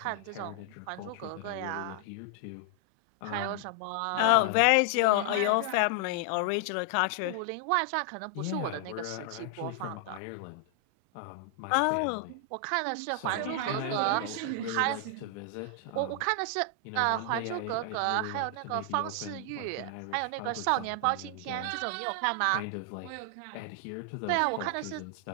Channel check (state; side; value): different; both; correlation 0.00